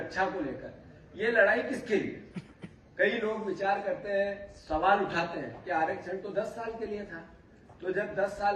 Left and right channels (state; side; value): identical; both; correlation 1.00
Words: को लेकर ये लड़ाई किसके लिए? कई लोग विचार करते हैं, सवाल उठाते हैं कि आरक्षण तो 10 साल के लिए था, तो जब 10